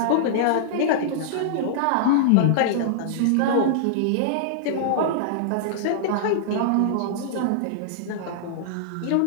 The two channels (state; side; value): different; both; correlation -0.02